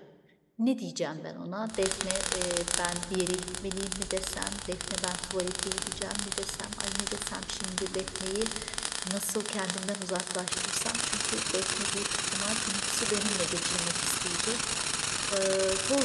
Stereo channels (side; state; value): both; identical; correlation 1.00